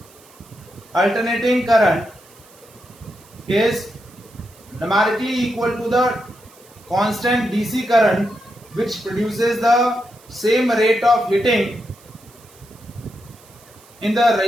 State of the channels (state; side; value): noise; right; hiss, 26 dB below the sound